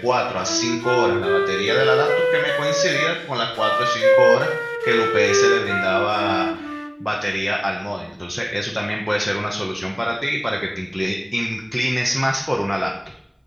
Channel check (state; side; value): identical; both; correlation 1.00